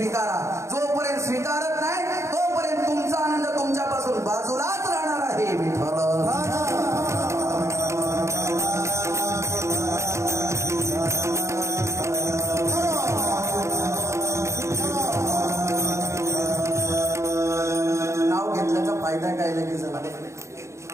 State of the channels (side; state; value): left; late; 0.14 ms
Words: जोपर्यंत स्वीकारत नाही तोपर्यंत तुमचा आनंद तुमच्यापासून बाजूलाच राहणार आहे. विठ्ठल नाव घेतल्याचा फायदा काय लगेच